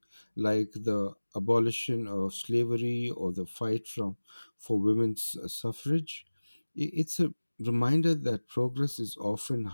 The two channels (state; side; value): inverted; both; correlation -1.00